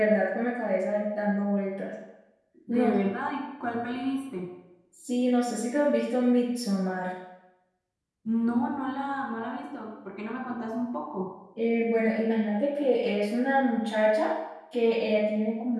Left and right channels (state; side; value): identical; both; correlation 1.00